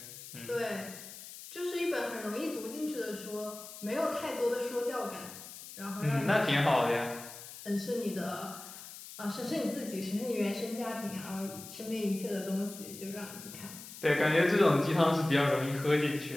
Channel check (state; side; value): noise; left; hiss, 14 dB below the sound